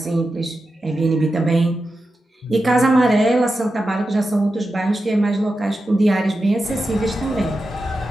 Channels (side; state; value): both; normal; correlation 0.90